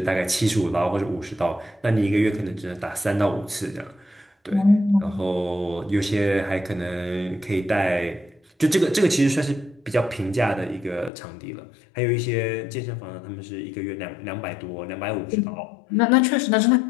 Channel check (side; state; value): right; drops out; at 11.1 s